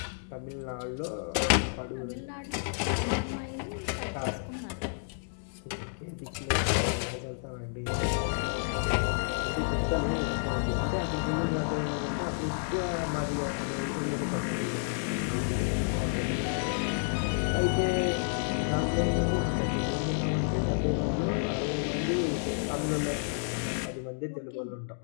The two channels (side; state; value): right; silent; digital silence